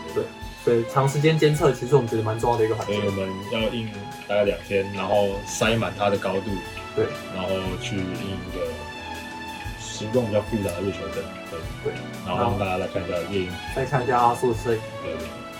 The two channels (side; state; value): both; identical; correlation 1.00